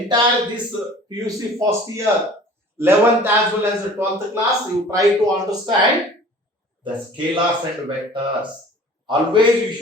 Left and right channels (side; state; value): both; normal; correlation 0.46